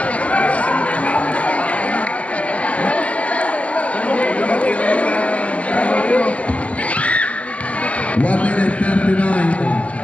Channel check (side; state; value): right; late; 0.064 ms